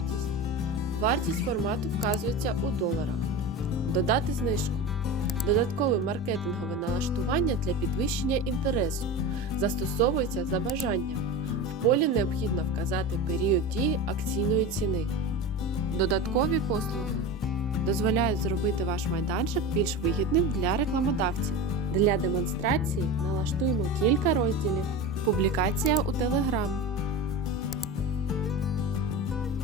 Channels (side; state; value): both; normal; correlation 0.27